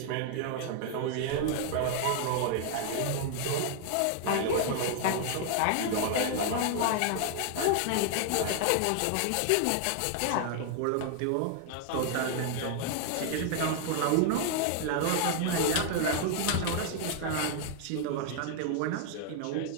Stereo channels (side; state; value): both; different; correlation 0.00